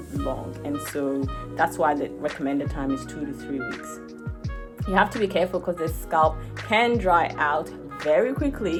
long. And so that's why the recommended time is 2 to 3 weeks. You have to be careful because the scalp can dry out very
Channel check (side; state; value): both; identical; correlation 1.00